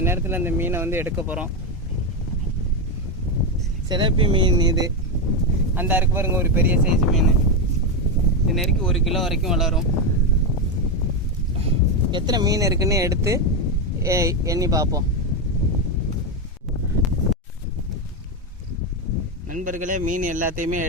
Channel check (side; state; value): both; normal; correlation 0.09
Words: நேரத்தில் இந்த மீனை வந்து எடுக்க போகிறோம். சிலப்பி மீன் இது. அந்த இருக்கு பாருங்க, ஒரு பெரிய சைஸ் மீன். இது நெருக்கி 1 கிலோ வரைக்கும் வளரும். எத்தனை மீன் இருக்குன்னு எடுத்து எண்ணி பார்ப்போம். நண்பர்களே, மீன் எல்லாத்தையுமே